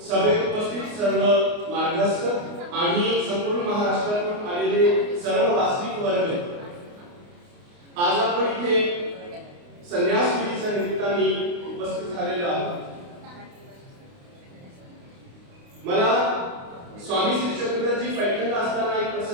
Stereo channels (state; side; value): late; left; 29 ms